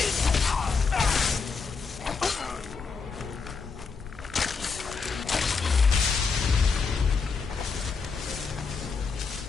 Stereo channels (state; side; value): quieter; right; 5.0 dB